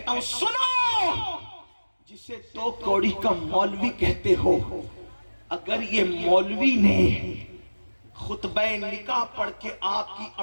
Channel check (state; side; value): inverted; both; correlation -1.00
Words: ہوں سنو، جسے تو کوڑی کا مولوی کہتے ہو، اگر یہ مولوی نے خطبہ نکاح پڑھ کے آپ کی